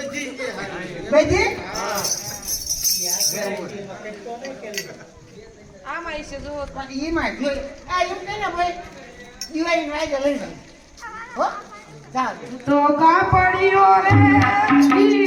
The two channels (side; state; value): both; identical; correlation 1.00